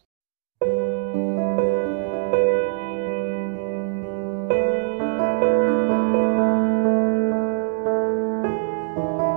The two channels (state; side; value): silent; left; digital silence